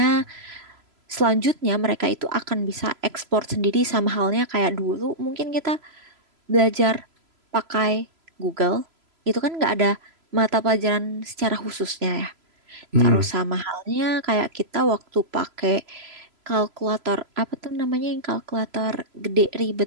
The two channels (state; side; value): late; left; 3.0 ms